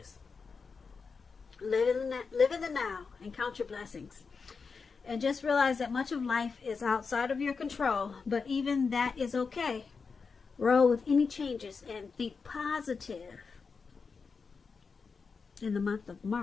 Live in the now and count your blessings. And just realize that much of life is outside of your control, but even that is okay. Roll with any changes and think positive in the month of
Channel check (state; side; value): quieter; right; 5.1 dB